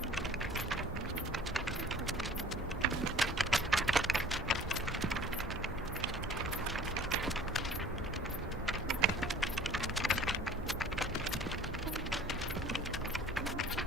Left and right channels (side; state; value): both; normal; correlation 0.49